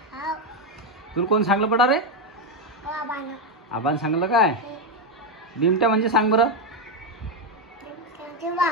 तुला कोण सांगलं पडा रे? आबान सांगलं काय? बिमट्या म्हणजे सांग बरं.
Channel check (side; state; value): both; normal; correlation 0.06